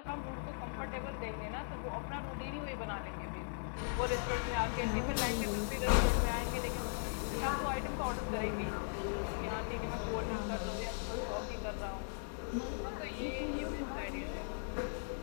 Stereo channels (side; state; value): right; silent; digital silence